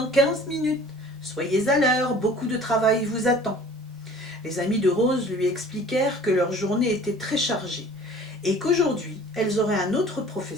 15 minutes. Soyez à l'heure, beaucoup de travail vous attend. » Les amies de Rose lui expliquèrent que leur journée était très chargée et qu'aujourd'hui, elles auraient un autre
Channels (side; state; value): both; normal; correlation 0.48